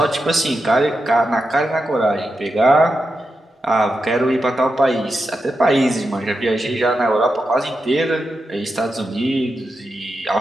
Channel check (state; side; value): normal; both; correlation 0.88